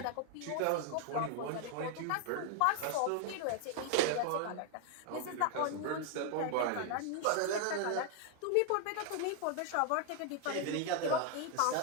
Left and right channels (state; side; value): different; both; correlation 0.00